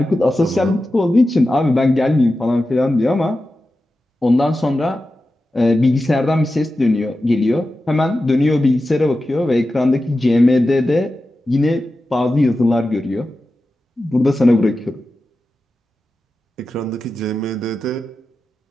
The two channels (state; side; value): normal; both; correlation 0.92